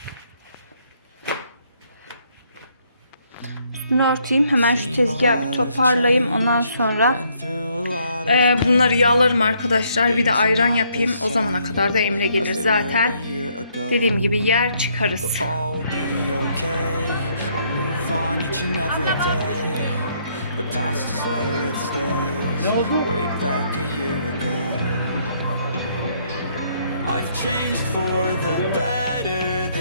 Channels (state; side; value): inverted; both; correlation -0.69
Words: üstünü örteyim. Hemen şu tezgahı bir toparlayayım. Ondan sonra bunları yağlarım arkadaşlar. Bir de ayran yapayım. O zamana kadar da Emre gelir zaten. Dediğim gibi yer çıkarız. The past is where it stays. Way back a year ago. I've changed for the better